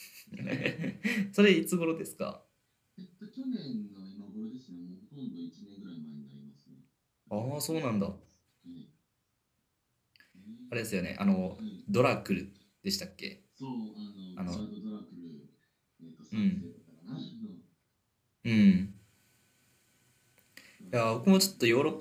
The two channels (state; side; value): identical; both; correlation 1.00